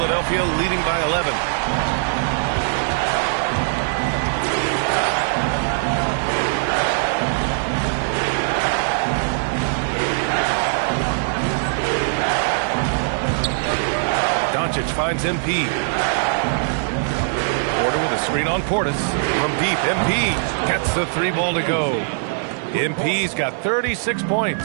leading by 11. Doncic finds MP. Porter with a screen on Portis. From deep, MP gets the 3 ball to go. MP's got 36 points.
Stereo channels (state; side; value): silent; left; digital silence